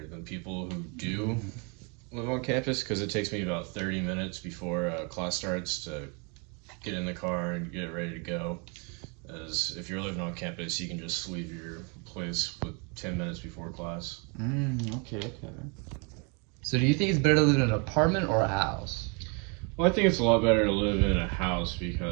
than people who do live on campus, because it takes me about 30 minutes before class starts to get in the car and get ready to go. As if you're living on campus, you can just leave your place with 10 minutes before class. Okay. So do you think it's better to live in an apartment or a house? Well, I think it's a lot better to live in a house,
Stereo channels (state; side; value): quieter; left; 33.9 dB